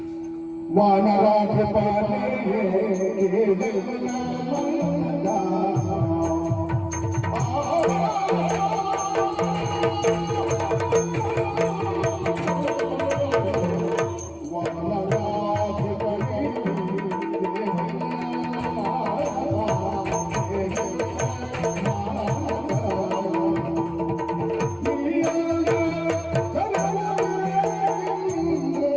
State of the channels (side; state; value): both; identical; correlation 1.00